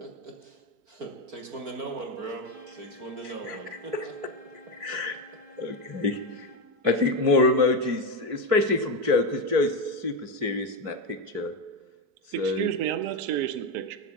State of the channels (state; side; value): late; left; 4.6 ms